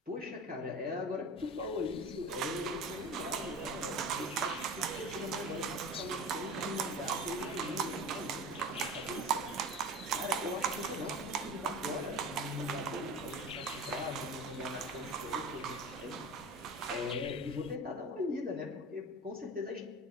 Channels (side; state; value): both; normal; correlation 0.34